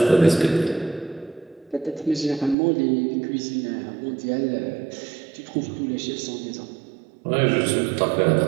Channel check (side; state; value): left; drops out; at 2.6 s